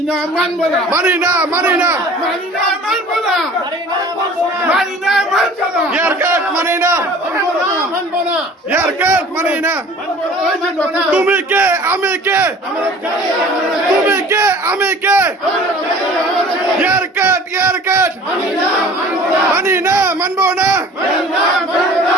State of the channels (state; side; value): normal; both; correlation 0.46